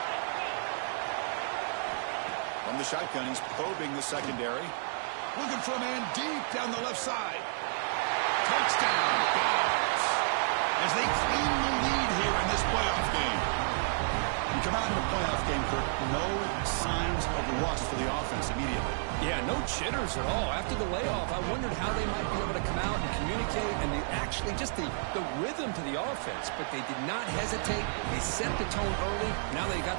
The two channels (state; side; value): silent; left; 57 dB below the other